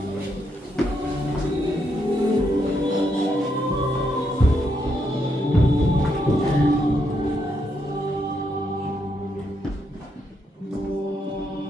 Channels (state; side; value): normal; both; correlation 0.78